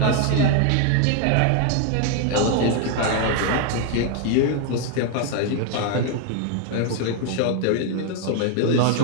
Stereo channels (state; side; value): different; both; correlation 0.01